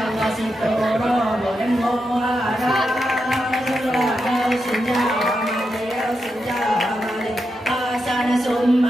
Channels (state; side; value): normal; both; correlation 0.86